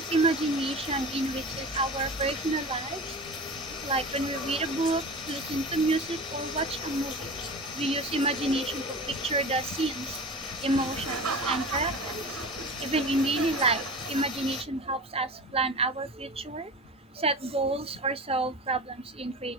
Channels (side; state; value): both; normal; correlation 0.32